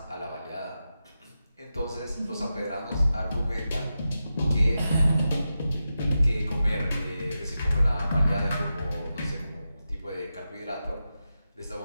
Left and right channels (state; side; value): inverted; both; correlation -0.90